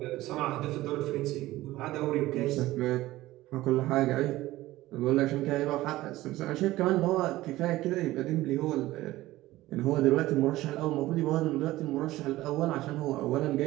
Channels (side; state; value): left; quieter; 16.9 dB